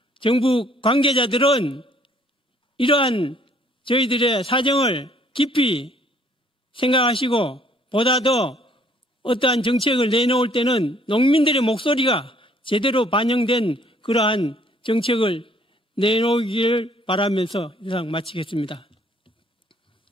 정부 관계자들은 이러한 저희들의 사정을 깊이 생각하시고 보다 더 어떠한 정책을 내놓을 때는 농민들의 목소리가 제대로 반영된 그러한 정책을 내놓기를 바라면서 이상 마치겠습니다.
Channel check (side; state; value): both; normal; correlation 0.61